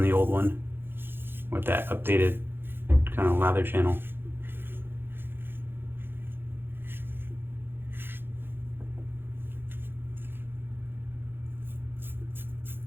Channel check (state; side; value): late; left; 0.10 ms